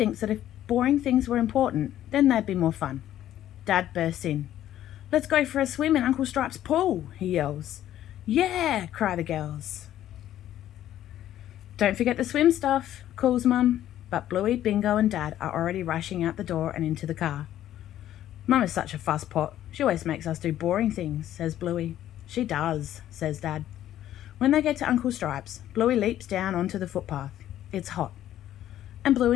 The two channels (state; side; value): quieter; right; 12.2 dB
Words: that if boring things were important, then they'd be more fun. Dad bursts in. Let's go for a swim in Uncle Stripe's pool, he yells. Yeah, cry the girls. Don't forget the swim stuff, calls Mum, but Bluey, Bingo and Dad are already rushing out the door and into the car. Mum is such a fusspot. She always makes us do boring things, says Bluey. She does, says Dad. When they get to Uncle Stripe's, Bluey leaps down onto the footpath. It's hot. And